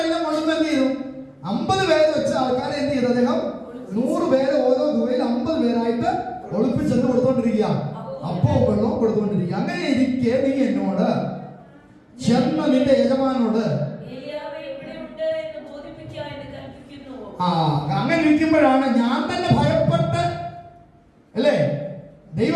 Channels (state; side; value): identical; both; correlation 1.00